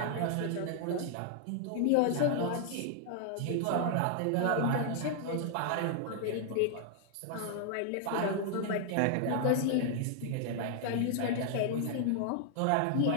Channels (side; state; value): both; different; correlation 0.00